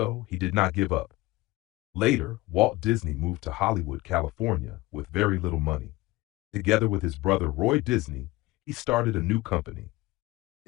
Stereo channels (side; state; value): right; quieter; 20.0 dB